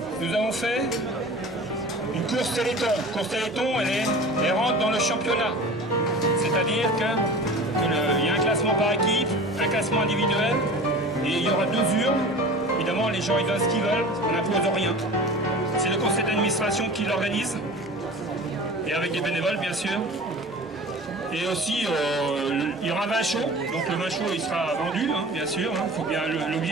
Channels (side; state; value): both; normal; correlation 0.38